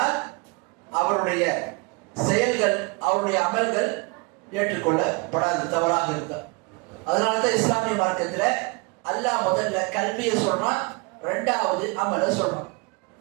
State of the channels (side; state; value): left; quieter; 29.6 dB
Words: அவருடைய செயல்கள், அவருடைய அமல்கள் ஏற்றுக்கொள்ளப்படாது, தவறாக இருந்தார். அதனாலதான் இஸ்லாமிய மார்க்கத்துல அல்லாஹ் முதல்ல கல்வியை சொல்றான், இரண்டாவது அமலை சொல்றான்.